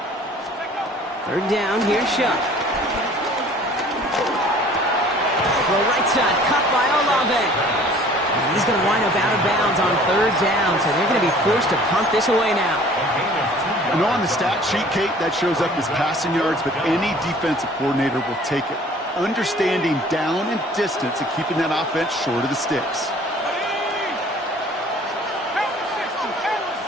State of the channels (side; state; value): both; normal; correlation 0.51